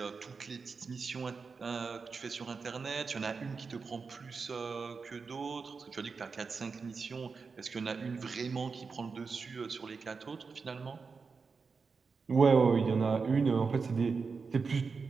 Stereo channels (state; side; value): quieter; left; 4.9 dB